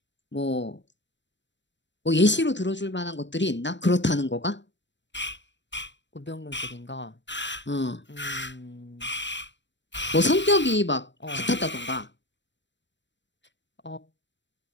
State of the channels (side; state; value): right; late; 0.53 ms